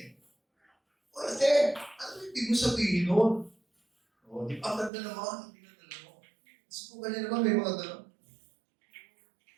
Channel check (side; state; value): left; drops out; at 4.9 s